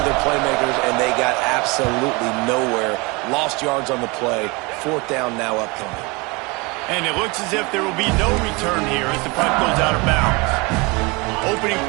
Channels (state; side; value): quieter; left; 26.8 dB